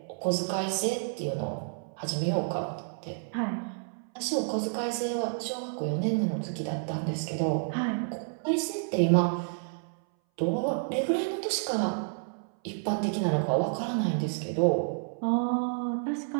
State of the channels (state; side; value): silent; left; 58 dB below the other